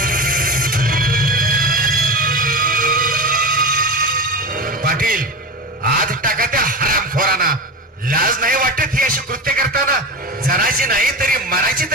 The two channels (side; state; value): both; normal; correlation 0.24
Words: पाटील आज टाका त्या हरामखोरांना. लाज नाही वाटत ही अशी कृत्य करताना? जनाची नाही तरी मनाची